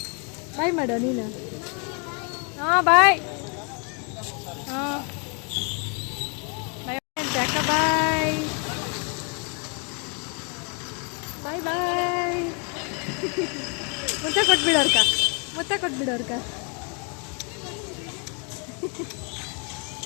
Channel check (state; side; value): quieter; right; 36.7 dB